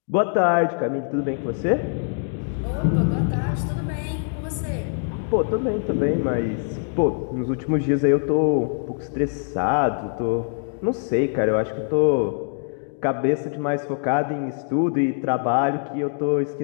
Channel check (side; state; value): right; silent; 63 dB below the other